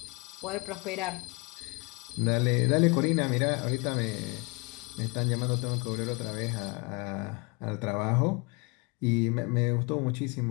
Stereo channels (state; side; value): quieter; right; 29.0 dB